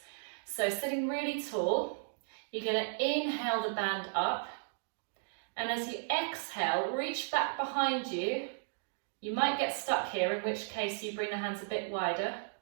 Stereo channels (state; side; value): silent; left; digital silence